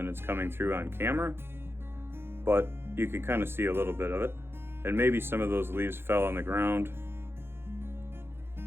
it's coming through on camera, but you can kind of see a little bit of it. And maybe some of those leaves fell on the ground.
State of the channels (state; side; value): late; left; 0.11 ms